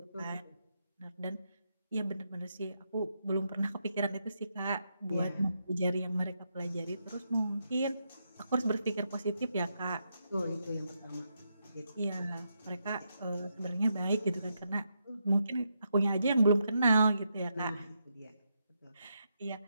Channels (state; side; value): inverted; both; correlation -0.82